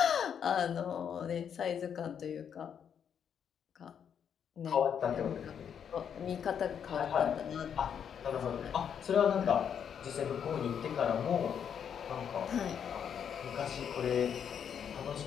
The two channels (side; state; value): right; quieter; 8.0 dB